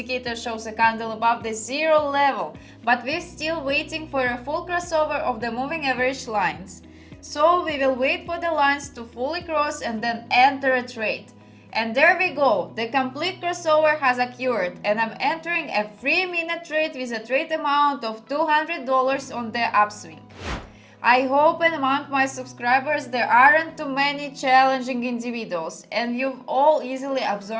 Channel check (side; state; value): both; identical; correlation 1.00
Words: shows a candle above the zero level, but we're still waiting for a full crossover of the moving average lines. So we will wait for the lines to fully cross and then enter a trade. And there we go, the complete crossover has occurred and I'm entering a 3-minute trade with a trade amount of $200 on the upswing. I hope among my subscribers there aren't too many challenging individuals and you've all easily